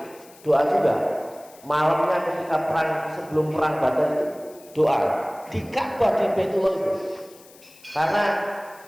doa juga malamnya ketika sebelum perang Badar itu doa di Ka'bah di Baitullah itu, karena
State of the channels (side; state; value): left; noise; hiss, 24 dB below the sound